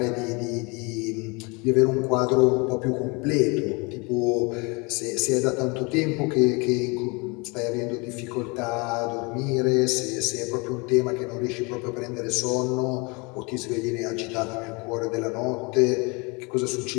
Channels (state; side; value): quieter; right; 29.0 dB